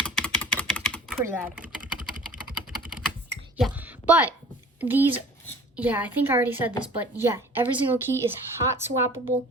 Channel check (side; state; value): both; normal; correlation 0.46